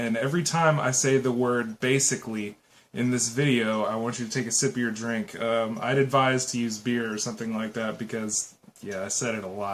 every time I say the word basically in this video, I want you to take a sip of your drink. I'd advise to use beer or something like that because, yeah, I said it a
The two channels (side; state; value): both; identical; correlation 1.00